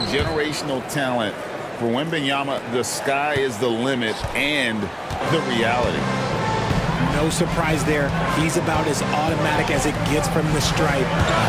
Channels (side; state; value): both; identical; correlation 1.00